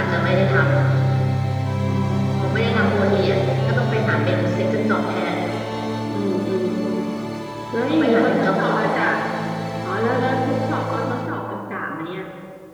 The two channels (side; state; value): both; identical; correlation 1.00